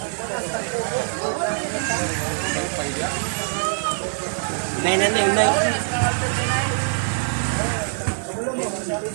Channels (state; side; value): silent; left; 62 dB below the other